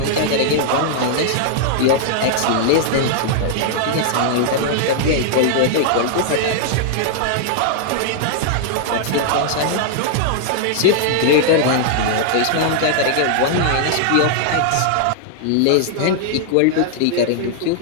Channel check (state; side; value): different; both; correlation -0.01